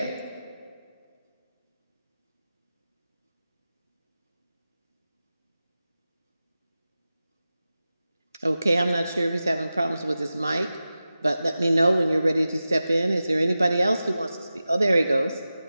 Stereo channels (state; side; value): inverted; both; correlation -0.94